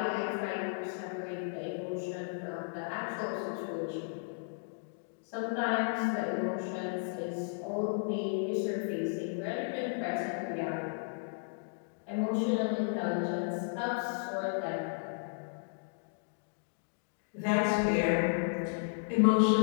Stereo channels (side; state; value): right; silent; digital silence